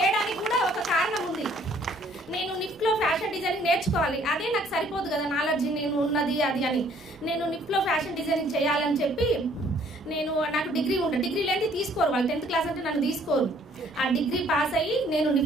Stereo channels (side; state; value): both; normal; correlation 0.61